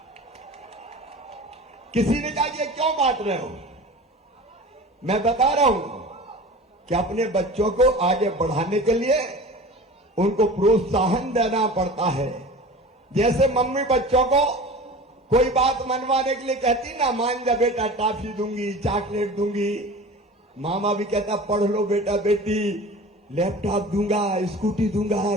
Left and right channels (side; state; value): both; normal; correlation 0.37